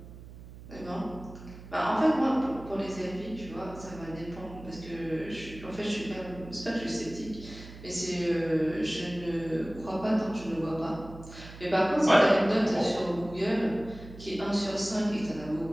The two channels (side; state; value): right; noise; hum, 15 dB below the sound